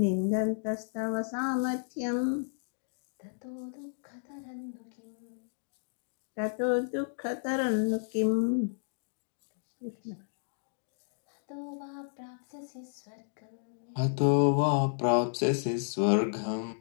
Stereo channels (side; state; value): right; silent; digital silence